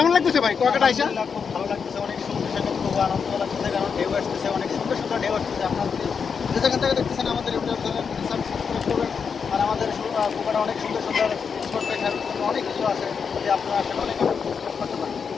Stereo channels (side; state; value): right; quieter; 6.1 dB